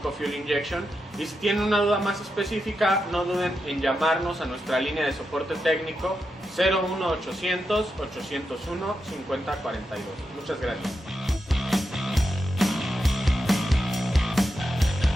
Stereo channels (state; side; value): normal; both; correlation 0.87